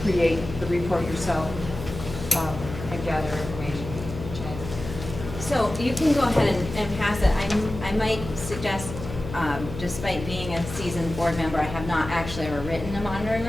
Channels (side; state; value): left; noise; hum, 9 dB below the sound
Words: create the report yourself and gather information. So you can go ahead and pass it. I might suggest, despite being a seasoned board member, I have not actually ever written a monitoring